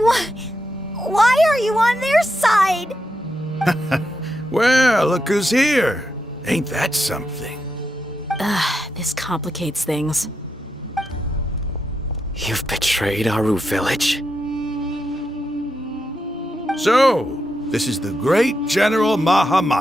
are you on their side? Well, look who's here. Ain't that something? This complicates things. You've betrayed Aru village? So, this is the great General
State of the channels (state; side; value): normal; both; correlation 0.85